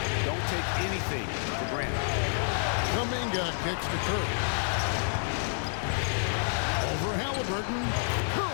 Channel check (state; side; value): silent; right; digital silence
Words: don't take anything for granted. Kuminga kicks to Curry. Over Halliburton.